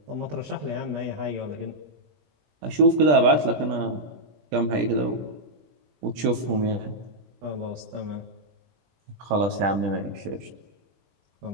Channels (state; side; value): late; left; 20 ms